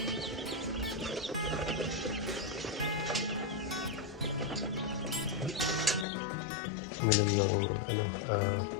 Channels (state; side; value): drops out; right; at 6.1 s